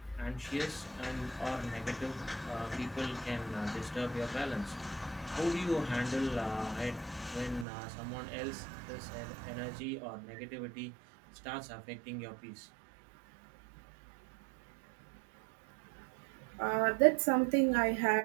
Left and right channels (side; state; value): left; drops out; at 7.7 s